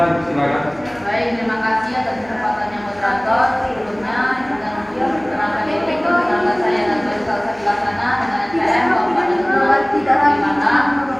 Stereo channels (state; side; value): noise; right; hum, 25 dB below the sound